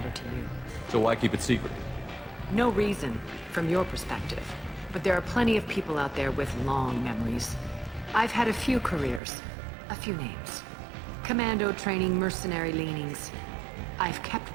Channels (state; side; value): drops out; left; at 9.2 s